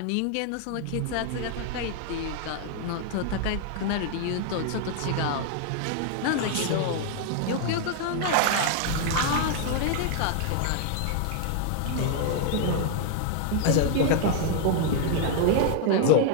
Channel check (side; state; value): both; different; correlation 0.00